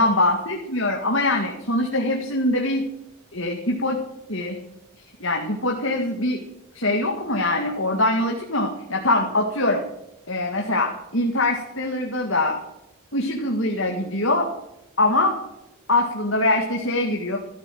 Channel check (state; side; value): normal; both; correlation -0.14